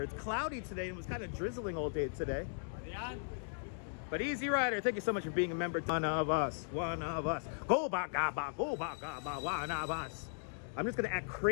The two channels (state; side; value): silent; right; digital silence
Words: It's cloudy today. It was kind of drizzling all day today. But Easy Rider, thank you so much for being a member. One of us. One of us. Go back, go back, one of us. I'm just going to act